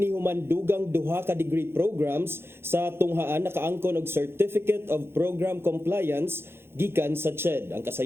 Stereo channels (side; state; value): left; late; 0.11 ms